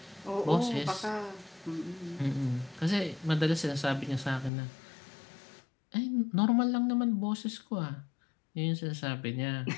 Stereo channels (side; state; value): right; drops out; at 4.5 s